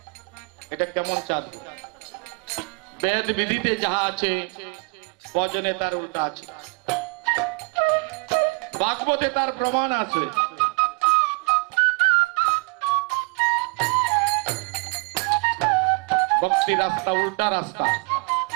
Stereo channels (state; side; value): quieter; left; 32.4 dB